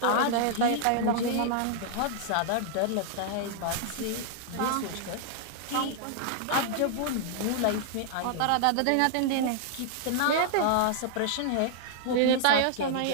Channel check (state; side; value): different; both; correlation -0.01